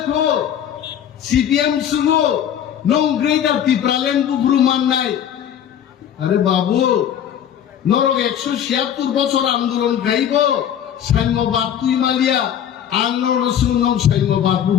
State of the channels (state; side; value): quieter; right; 9.6 dB